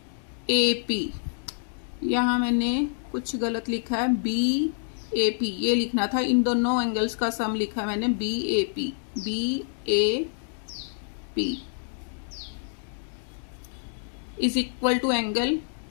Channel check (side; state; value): right; silent; digital silence